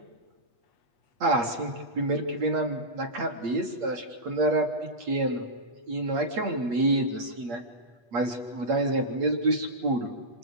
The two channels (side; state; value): left; late; 8.5 ms